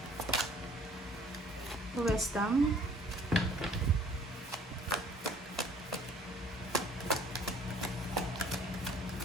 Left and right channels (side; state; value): both; normal; correlation 0.55